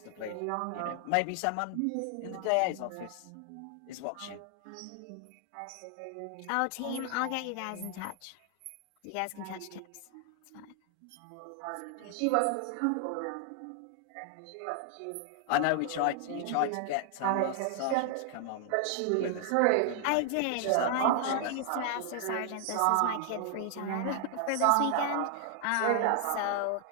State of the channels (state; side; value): different; both; correlation 0.00